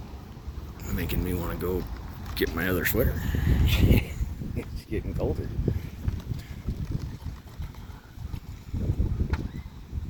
Making me want to go get my other sweater. It's getting colder.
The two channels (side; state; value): both; identical; correlation 1.00